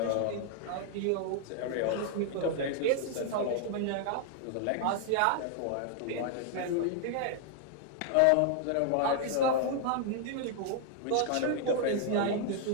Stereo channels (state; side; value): different; both; correlation 0.00